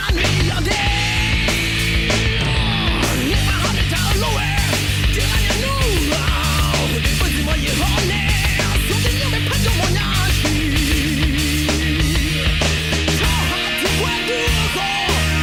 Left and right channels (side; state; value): both; identical; correlation 1.00